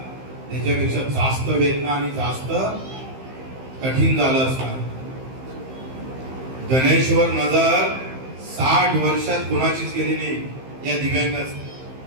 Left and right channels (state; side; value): late; left; 15 ms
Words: त्याच्यापेक्षा जास्त वेदना आणि जास्त कठीण झालं असणार. गणेशवर नजर 60 वर्षात कोणाचीच गेली नाही या दिव्यांगाच.